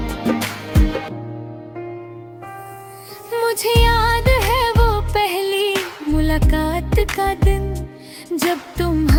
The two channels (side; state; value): both; identical; correlation 1.00